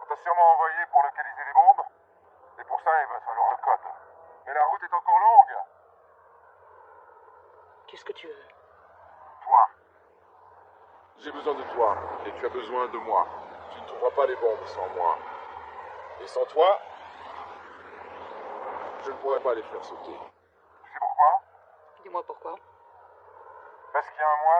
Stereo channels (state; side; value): identical; both; correlation 1.00